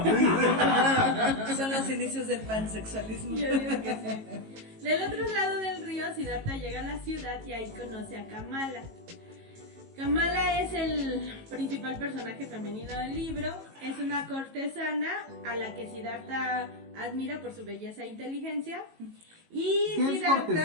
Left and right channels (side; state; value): left; late; 18 ms